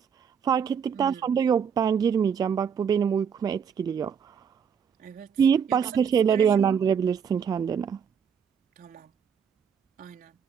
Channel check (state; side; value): quieter; left; 7.1 dB